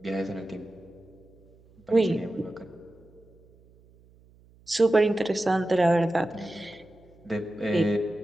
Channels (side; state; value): right; noise; hum, 28 dB below the sound